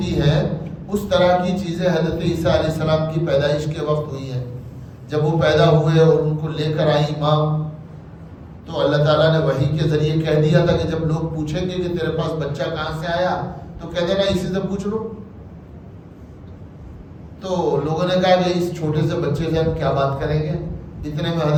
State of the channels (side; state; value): both; identical; correlation 1.00